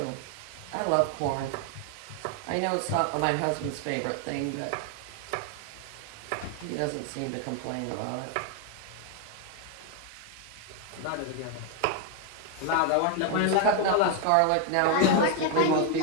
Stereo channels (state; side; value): different; both; correlation 0.01